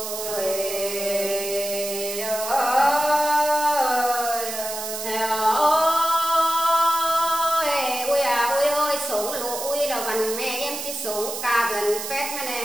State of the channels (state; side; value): noise; right; hiss, 6 dB below the sound